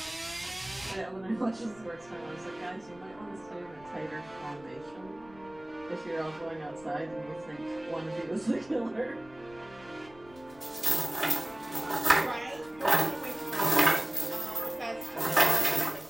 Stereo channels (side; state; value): left; noise; rumble, 23 dB below the sound